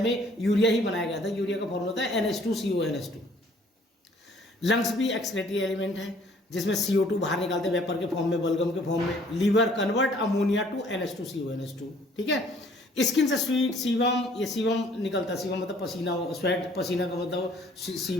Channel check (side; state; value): both; normal; correlation 0.58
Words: यूरिया ही बनाया गया था। यूरिया का फॉर्मूला होता है NH2CONH2। लंग्स भी एक्सक्रीटरी एलिमेंट है जिसमें CO2 बाहर निकालते हैं वेपर के फॉर्म में, बलगम के फॉर्म में। Liver convert ammonia to NH2CONH2, ठीक है। स्किन से स्वीट सीवम, ये सीवम निकलता है। सीवम मतलब पसीना, स्वेट पसीना का मतलब